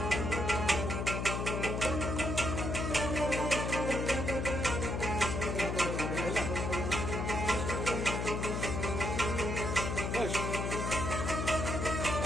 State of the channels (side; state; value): left; noise; hum, 1 dB below the sound